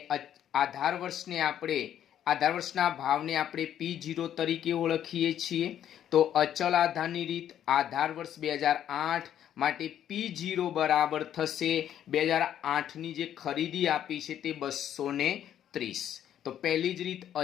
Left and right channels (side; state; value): right; quieter; 10.4 dB